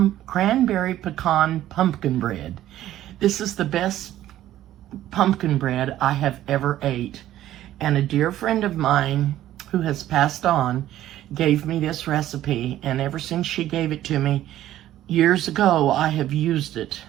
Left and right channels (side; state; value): left; quieter; 13.2 dB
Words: pumpkin bread. This is the best pumpkin bread I have ever ate, and a dear friend of mine who has passed on gave me this recipe, and ever since she gave it to me years ago I have used it.